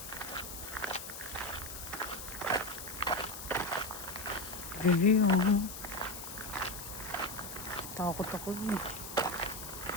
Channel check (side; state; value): left; noise; hiss, 9 dB below the sound